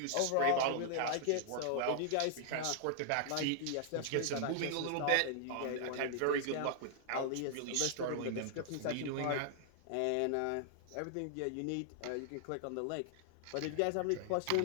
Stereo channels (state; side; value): different; both; correlation -0.01